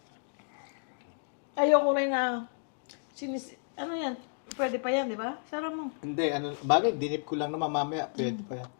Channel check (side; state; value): right; silent; digital silence